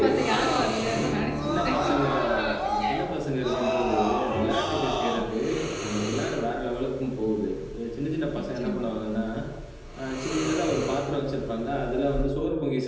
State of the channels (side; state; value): both; identical; correlation 1.00